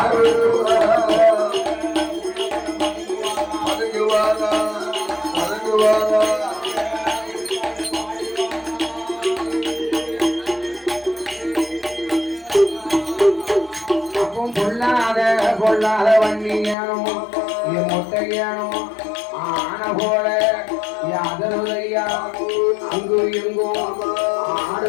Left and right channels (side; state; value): right; drops out; at 16.8 s